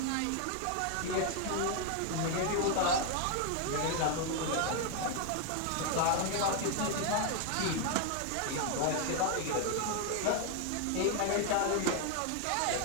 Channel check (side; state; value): both; different; correlation 0.01